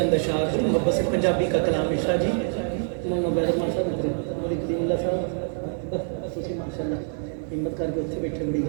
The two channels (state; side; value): silent; left; 58 dB below the other